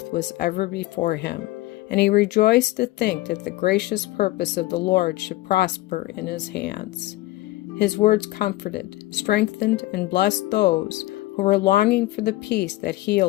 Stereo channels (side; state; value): right; quieter; 18.2 dB